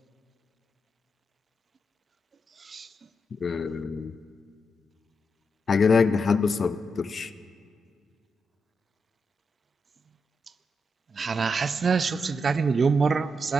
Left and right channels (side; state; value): both; normal; correlation 0.83